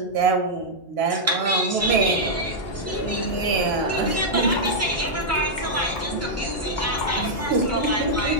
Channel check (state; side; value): normal; both; correlation -0.07